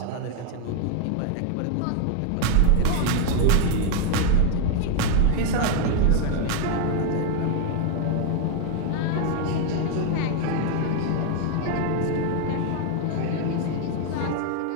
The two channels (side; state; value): both; different; correlation 0.00